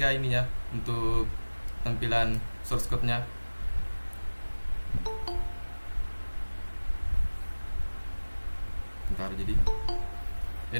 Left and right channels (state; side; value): inverted; both; correlation -1.00